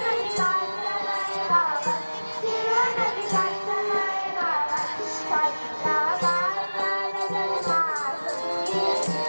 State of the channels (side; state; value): both; inverted; correlation -1.00